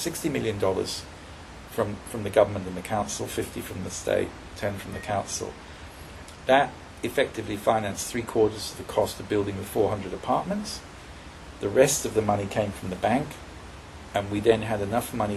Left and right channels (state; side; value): identical; both; correlation 1.00